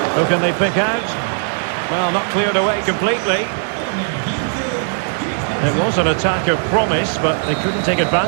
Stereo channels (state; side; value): silent; left; digital silence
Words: Who can they pick out? Well, not cleared away completely. It was an attack of promise, but they couldn't take